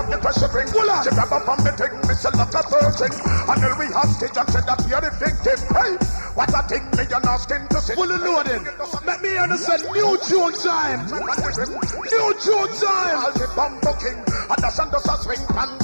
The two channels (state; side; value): inverted; both; correlation -1.00